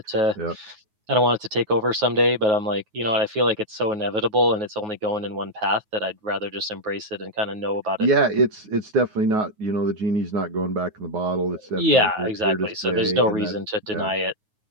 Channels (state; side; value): late; left; 9.4 ms